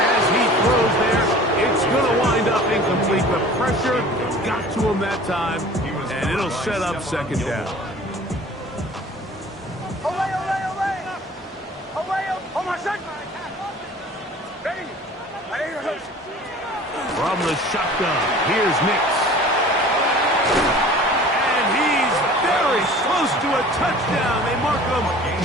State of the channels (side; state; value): both; normal; correlation 0.45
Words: he throws there. It's going to wind up incomplete. The pressure got to him that time, and it'll set up 2nd down. Away, away, away. Away, oh my son. Ready. Ready. From the shotgun, here's Nix. And he's very close to a touchdown. They mark him